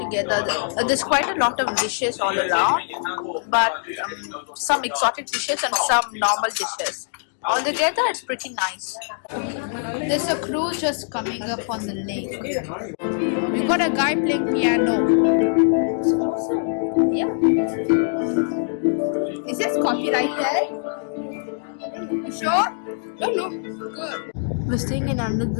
There's quite a lot of dishes all around, but some exotic dishes and some normal dishes. Altogether, it's pretty nice. There's a cruise just coming up on the lake. We got a guy playing piano. Yeah. Is this copyrighted? You sure? Good. We're staying in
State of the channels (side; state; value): right; silent; digital silence